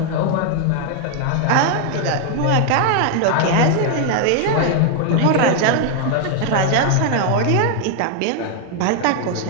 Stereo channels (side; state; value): both; different; correlation 0.01